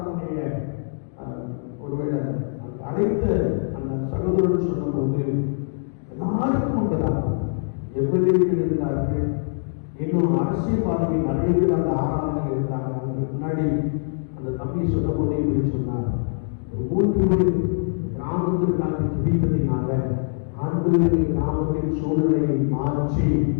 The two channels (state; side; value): silent; right; digital silence